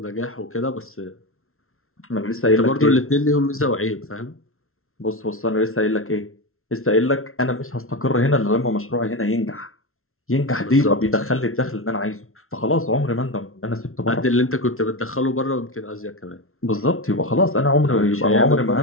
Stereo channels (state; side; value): late; right; 0.62 ms